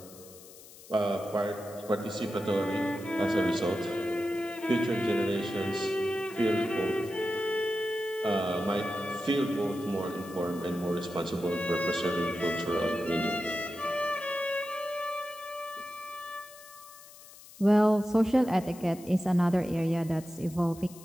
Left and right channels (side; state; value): left; noise; hiss, 19 dB below the sound